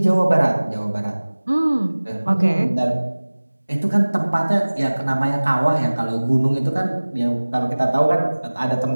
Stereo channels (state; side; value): inverted; both; correlation -1.00